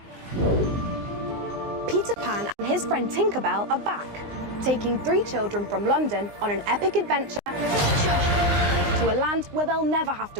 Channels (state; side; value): late; left; 19 ms